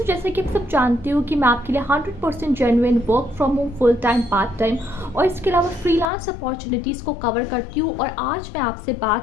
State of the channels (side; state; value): right; drops out; at 6.1 s